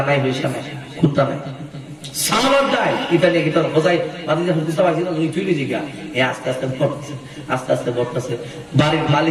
নাই, পয়সা নাই, খুদা নাই, সালাদ দেয়। ইতালি কি তোর বোঝাই বাদি যখন বুঝতে পারছি না, তুই তুই জিগা এ আস্তে আস্তে বড়তেছে, আস্তে আস্তে বড়তেছে। বাড়ির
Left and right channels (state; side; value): identical; both; correlation 1.00